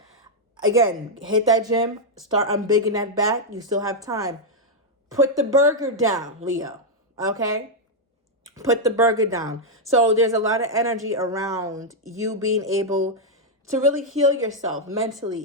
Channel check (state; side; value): normal; both; correlation -0.02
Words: again, hit that gym, start unbigging that back. You still have time. Put the burger down, Leo. Okay? Put the burger down. So there's a lot of energy around you being able to really heal yourself